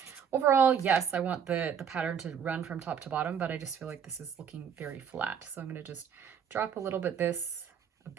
overall, yes, I want the pattern to run from top to bottom, but I just feel like this is looking very flat. So I'm going to just drop a little bit of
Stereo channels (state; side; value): quieter; left; 7.6 dB